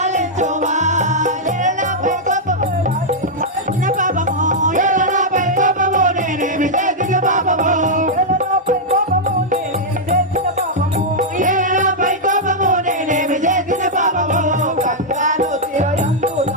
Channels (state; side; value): normal; both; correlation -0.05